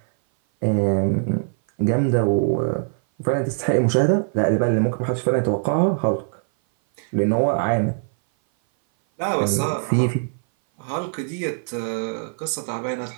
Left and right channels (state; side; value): silent; left; 58 dB below the other